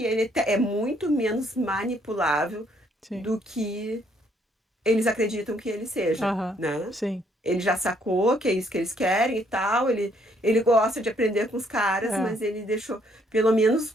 ele é muito menos manipulável Sim. do que eles acreditam que ele seja, Aham. né? Sim. ele já sacou que é isso que eles querem e tal. Ele gosta de aprender com os caras, É. mas ele deixou, pelo menos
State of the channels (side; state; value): both; normal; correlation 0.68